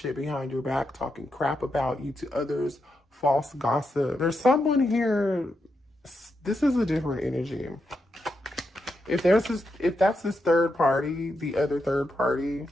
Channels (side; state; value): both; normal; correlation 0.84